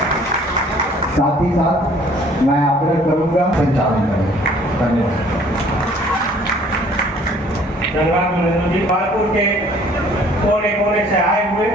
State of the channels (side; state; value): both; normal; correlation 0.56